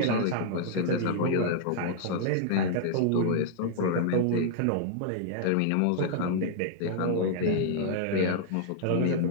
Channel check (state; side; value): different; both; correlation -0.01